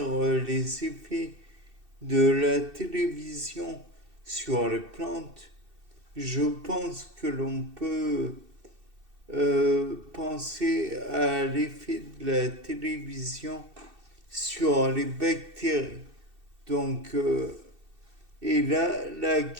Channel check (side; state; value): left; late; 2.6 ms